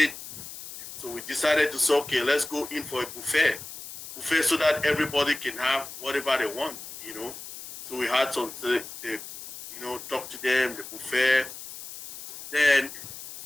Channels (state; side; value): noise; left; hiss, 12 dB below the sound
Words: So we decided to say, okay, let's go in for a buffet so that everybody can have whatever they want. So we had some, talk to them, the buffet. Then